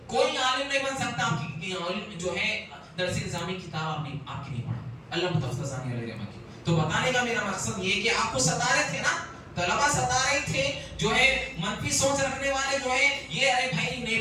کوئی عالم نہیں بن سکتا. عالم جو ہے درس نظامی کتاب آپ کی نہیں پڑھا علامہ تفتزانی علیہ رحمہ کی. تو بتانے کا میرا مقصد یہ ہے کہ آپ کو ستا رہے تھے نا، طلبہ ستا رہے تھے، جو ہے منفی سوچ رکھنے والے جو ہے یہ ارے بھائی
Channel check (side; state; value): both; identical; correlation 1.00